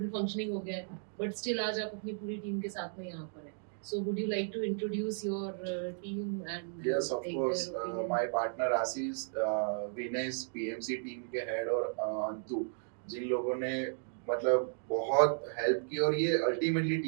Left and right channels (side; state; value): left; silent; digital silence